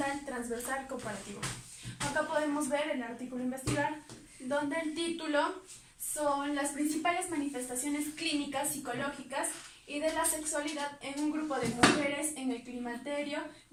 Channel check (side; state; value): both; identical; correlation 1.00